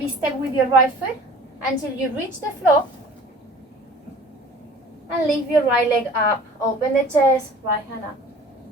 step with your right foot until you reach the floor. And lift your right leg up. Open the chest, right hand up.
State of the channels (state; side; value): normal; both; correlation 0.46